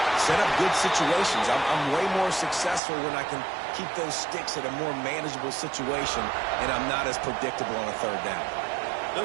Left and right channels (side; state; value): left; drops out; at 2.8 s